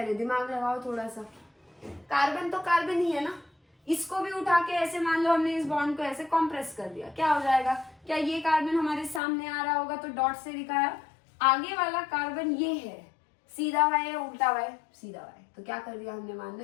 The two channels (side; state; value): right; drops out; at 9.2 s